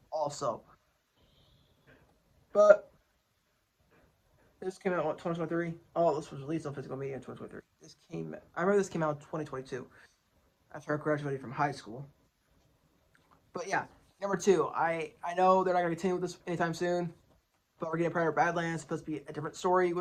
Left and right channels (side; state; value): both; identical; correlation 1.00